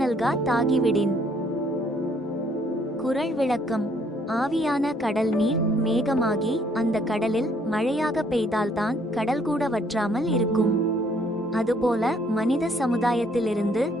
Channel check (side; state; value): both; normal; correlation 0.65